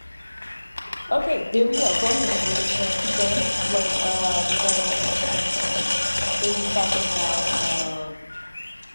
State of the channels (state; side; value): inverted; both; correlation -1.00